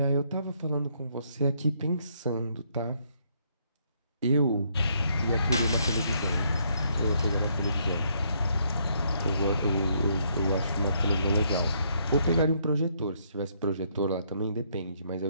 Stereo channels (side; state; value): both; inverted; correlation -0.71